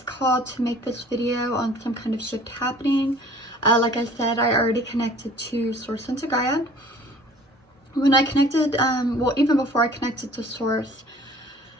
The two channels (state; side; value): normal; both; correlation 0.50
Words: called to make this video on some kind of shift happening. Like I said, I already connected to Source and to Gaia. When I connected, well, even before I connected to Source,